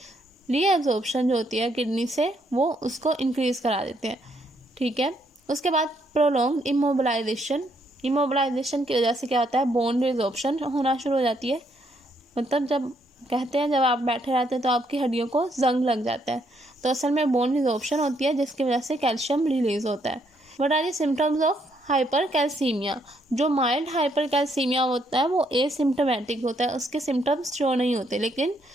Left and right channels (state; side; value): normal; both; correlation 0.73